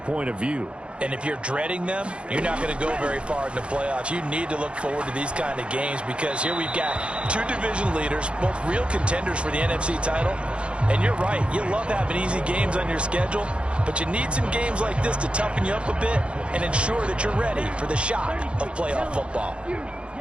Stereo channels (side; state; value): left; late; 0.058 ms